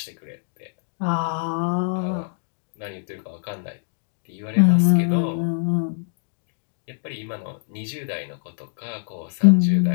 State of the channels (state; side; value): silent; right; digital silence